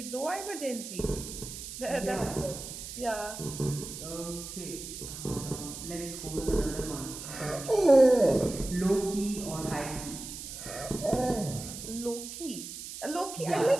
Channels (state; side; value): noise; right; hiss, 10 dB below the sound